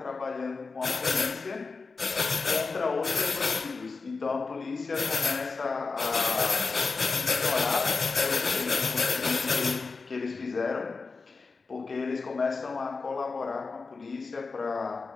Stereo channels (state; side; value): quieter; right; 4.3 dB